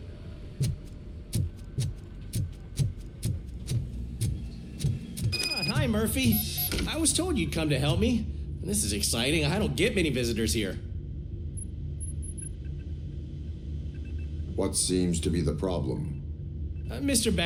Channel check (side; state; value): both; identical; correlation 1.00